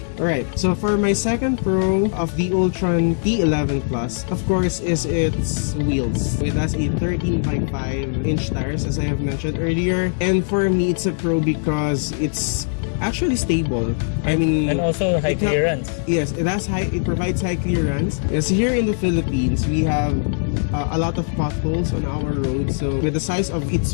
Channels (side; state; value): right; silent; digital silence